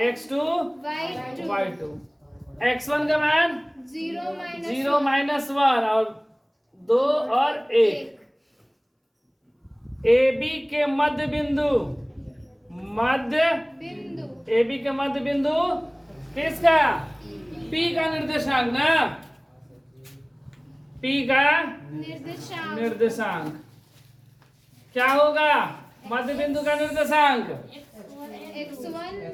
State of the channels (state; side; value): identical; both; correlation 1.00